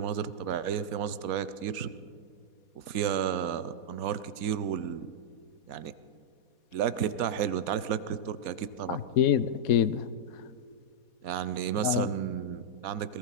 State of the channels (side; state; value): right; late; 4.2 ms